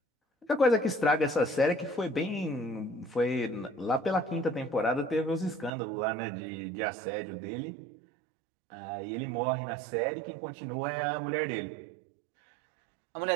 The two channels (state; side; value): drops out; left; at 5.7 s